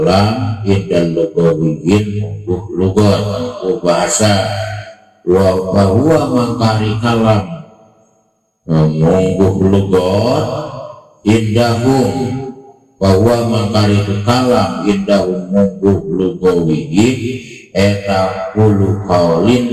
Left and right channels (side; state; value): both; identical; correlation 1.00